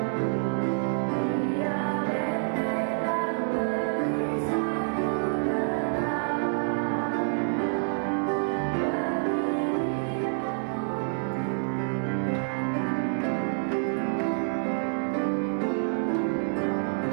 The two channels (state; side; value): silent; left; digital silence